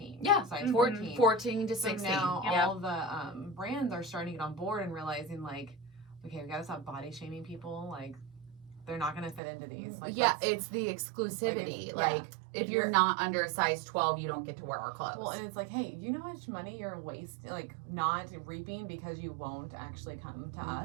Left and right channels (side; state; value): left; drops out; at 9.4 s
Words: Yeah. Size Mhm. 14. 14 to So 16. now Yep. all the brands are starting to get on board and realizing like, okay, we gotta stop body shaming people. Like, they're not gonna fit into these. Like, Yeah, let's- it's the exclusivity. Like, If you're not under a size 12, you don't get to wear our clothes. Well, and it's like, hey, you know how much money you're not reaping because you won't actually come to